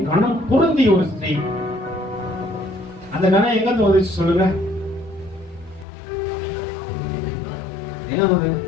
கணம் பொருந்திய ஒரு ஸ்திரீ. அந்த கணம் எங்க இருந்து வந்துச்சு சொல்லுங்க? எங்க வந்து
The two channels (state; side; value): drops out; right; at 5.9 s